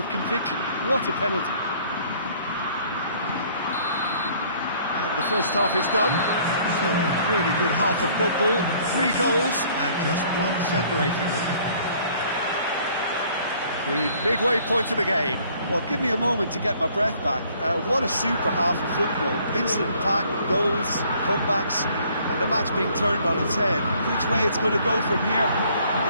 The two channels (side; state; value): both; inverted; correlation -0.59